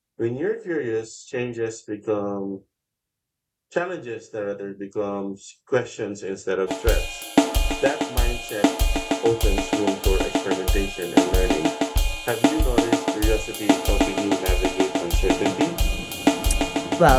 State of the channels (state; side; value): identical; both; correlation 1.00